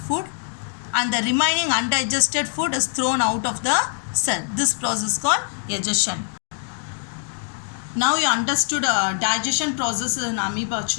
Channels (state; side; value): silent; right; 60 dB below the other